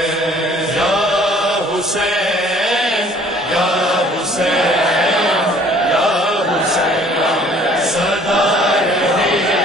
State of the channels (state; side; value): normal; both; correlation 0.55